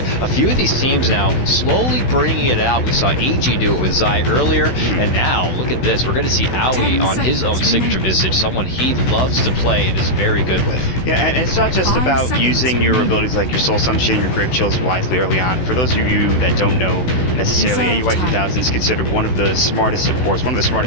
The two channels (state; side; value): late; right; 16 ms